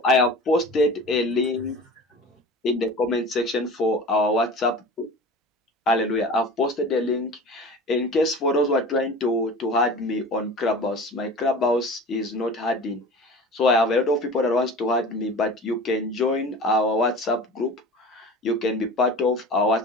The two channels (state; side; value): normal; both; correlation 0.37